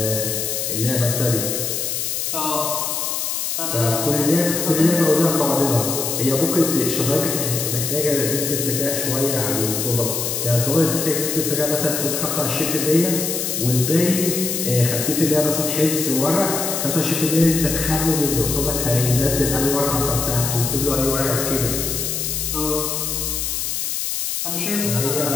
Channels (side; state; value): left; noise; hiss, 2 dB below the sound